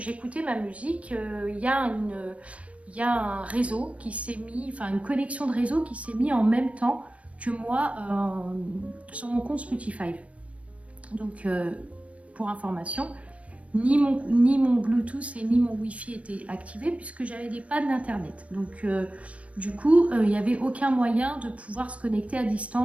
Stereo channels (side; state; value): left; late; 0.064 ms